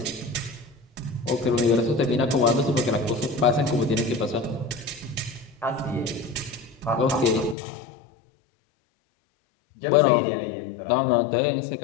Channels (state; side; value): drops out; right; at 7.6 s